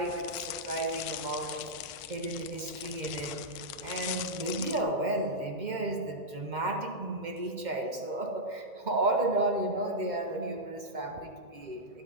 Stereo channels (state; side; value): late; left; 2.1 ms